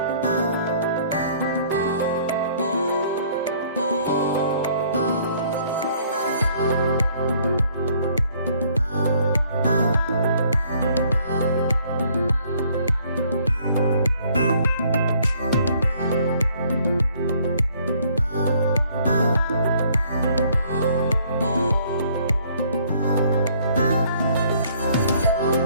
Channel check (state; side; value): inverted; both; correlation -0.61